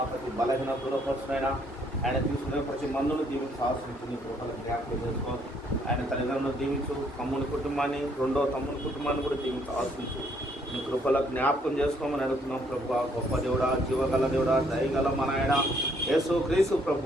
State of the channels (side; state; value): both; normal; correlation 0.67